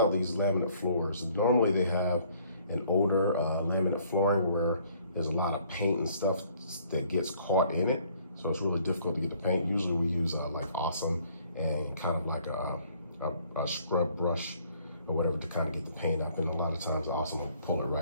these laminate floors. Normally they have an older laminate flooring where there's a lot of paint and stuff that gets caught in it, so it's really difficult to get the paint. Usually we use like Awesome and kind of like a scrub brush or whatever to kind of get the paint up, and a lot of times Awesome will pull it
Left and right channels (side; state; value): both; inverted; correlation -0.61